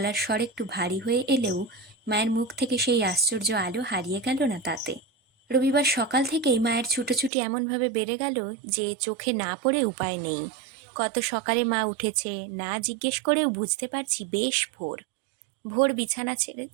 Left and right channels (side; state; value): left; drops out; at 7.3 s